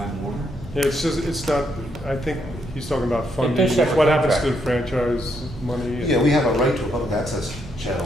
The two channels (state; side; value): normal; both; correlation 0.76